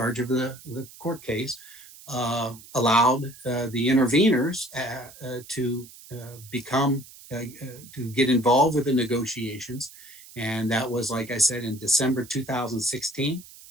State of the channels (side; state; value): right; noise; hiss, 20 dB below the sound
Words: of the court case, allowed the interveners to get involved with the negotiations, and that was, like I said, in December 2016,